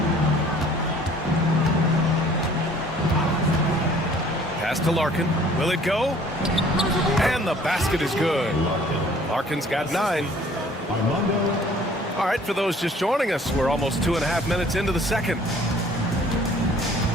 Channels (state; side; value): normal; both; correlation 0.54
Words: Pass to Larkin. Will it go? And the basket is good. Larkin's got 9. All right, for those just joining us, we're almost 2.5 minutes into the second.